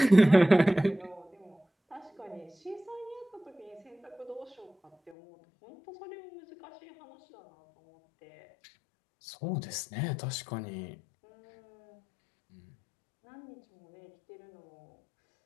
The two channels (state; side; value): drops out; right; at 5.2 s